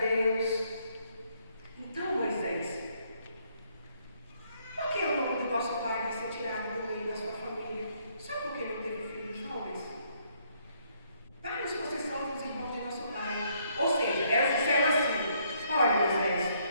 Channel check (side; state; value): both; inverted; correlation -0.70